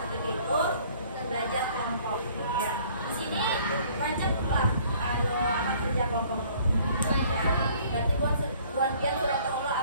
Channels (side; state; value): both; inverted; correlation -0.56